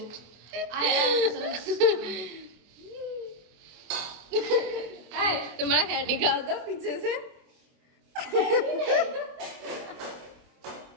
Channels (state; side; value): late; left; 24 ms